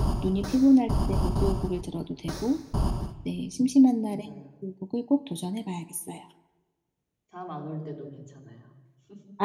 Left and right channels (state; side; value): identical; both; correlation 1.00